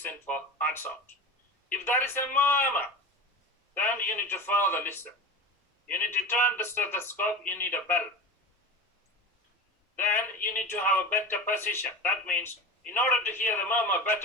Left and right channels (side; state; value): both; normal; correlation 0.29